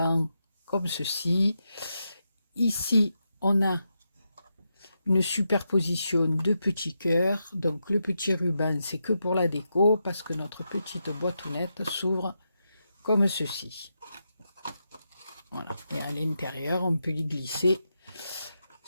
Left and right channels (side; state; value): both; inverted; correlation -0.86